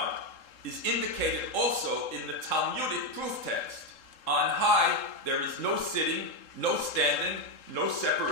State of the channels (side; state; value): right; late; 3.7 ms